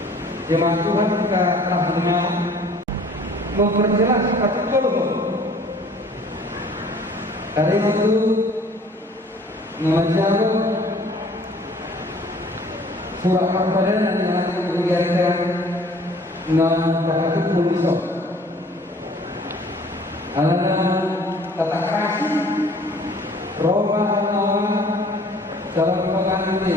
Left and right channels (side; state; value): both; normal; correlation 0.53